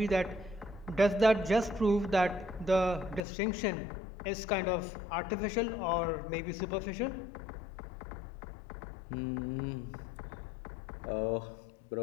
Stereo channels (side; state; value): right; drops out; at 3.2 s